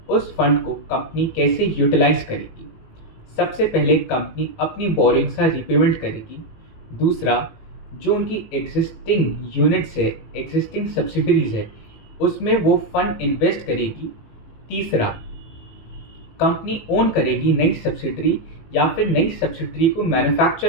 उस फंड को कंपनी कैसे यूटिलाइज करेगी। सबसे पहले कंपनी अपनी बोरिंग्स का रीपेमेंट करेगी। दूसरा, जो उनकी एग्जिस्टिंग यूनिट्स है, एग्जिस्टिंग सब्सिडरीज है, उसमें वो फंड इन्वेस्ट करेगी। तीसरा, कंपनी ओन करेगी नई सब्सिडरी या फिर नई सब्सिडरी को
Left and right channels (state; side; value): late; right; 18 ms